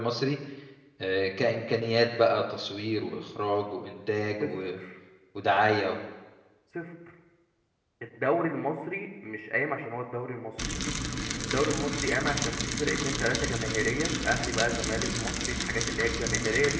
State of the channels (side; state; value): both; identical; correlation 1.00